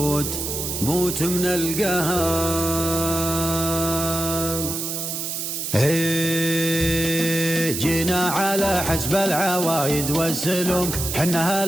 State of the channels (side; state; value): right; noise; hiss, 4 dB below the sound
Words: موت من القهر. جينا على حسب العوايد والسلوم، حنا